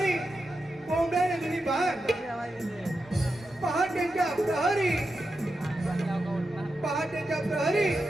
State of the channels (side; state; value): both; normal; correlation 0.89